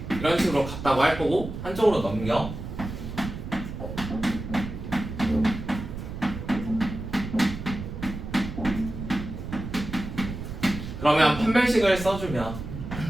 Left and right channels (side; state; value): right; noise; rumble, 8 dB below the sound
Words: 이런 식으로 같다고 할 거고 한쪽으로 넘겨. 그러면 판별식을 써주면